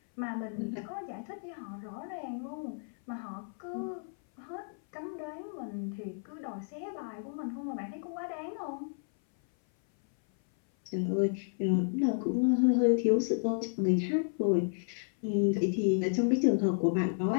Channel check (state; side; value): silent; right; 56 dB below the other